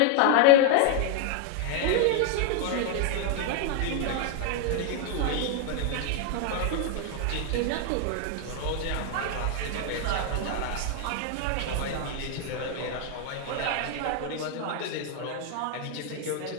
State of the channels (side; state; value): both; different; correlation 0.00